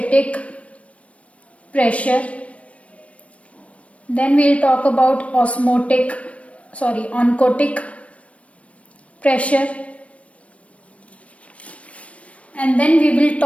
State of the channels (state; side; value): late; right; 0.064 ms